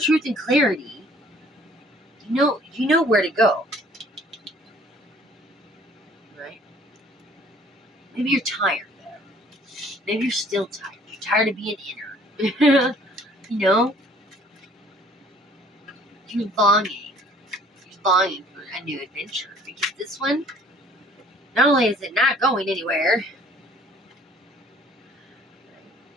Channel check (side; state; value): both; normal; correlation 0.56